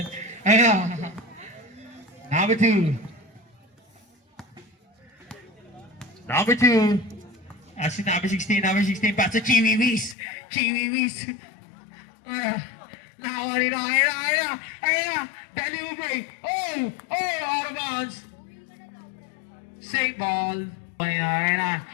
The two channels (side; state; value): right; drops out; at 10.2 s